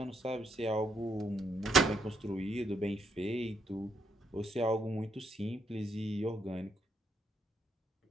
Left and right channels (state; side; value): normal; both; correlation 0.75